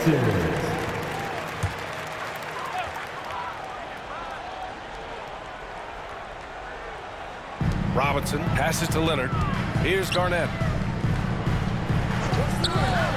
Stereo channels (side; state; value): both; identical; correlation 1.00